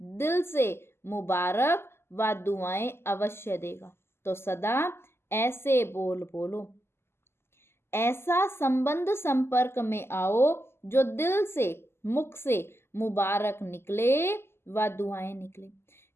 दिल से मुबारक व दुआएं अवश्य देगा। तो सदा ऐसे बोल बोलो, ऐसा संबंध संपर्क में आओ जो दिल से, मुख से मुबारक निकले व दुआएं निकले।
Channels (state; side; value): late; right; 0.12 ms